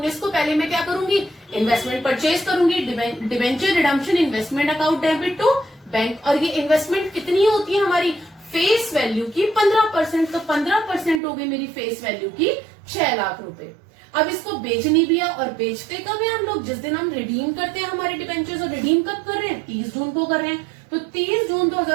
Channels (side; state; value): left; drops out; at 11.2 s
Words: को पहले मैं क्या करूंगी? इन्वेस्टमेंट परचेज करूंगी। Debenture redemption investment account debit to bank. और ये इन्वेस्टमेंट कितनी होती है हमारी? फेस वैल्यू की 15%। तो 15% हो गई मेरी फेस वैल्यू की 6 लाख रुपए। अब इसको बेचनी भी है, और बेचते कब है हम लोग? जिस दिन हम रिडीम करते हैं हमारे डिबेंचर्स। और रिडीम कब कर रहे हैं? 30 जून को कर रहे हैं। तो 30 June